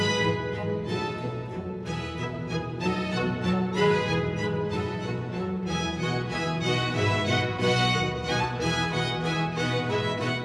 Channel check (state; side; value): identical; both; correlation 1.00